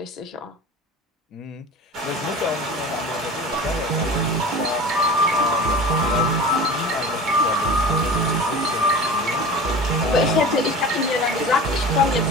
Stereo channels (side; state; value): both; normal; correlation 0.37